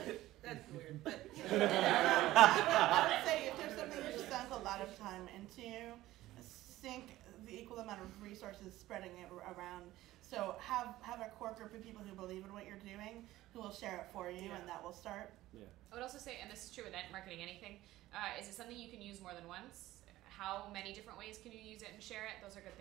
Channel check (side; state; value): left; quieter; 16.0 dB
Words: that's weird. But I would say if there's something you've sunk a lot of time into, sink the equal amount of resources spreading it around. So have a core group of people who believe in what you're doing, who will share it for you, and that will start. Yeah. I would also say, and this is true with marketing anything, is it something you can use more than once? How many different ways can you use it and share it? Those are good